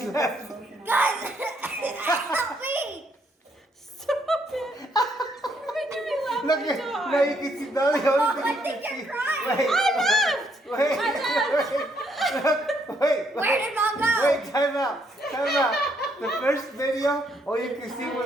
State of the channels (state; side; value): normal; both; correlation 0.72